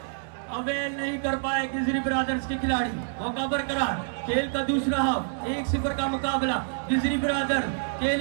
अवेल नहीं कर पाए गिजरी ब्रदर्स के खिलाड़ी। मौका बरकरार, खेल का दूसरा हाफ, 1-0 का मुकाबला। गिजरी ब्रदर्स खेल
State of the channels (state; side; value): silent; left; digital silence